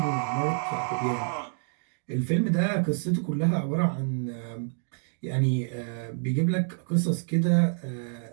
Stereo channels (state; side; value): silent; left; 60 dB below the other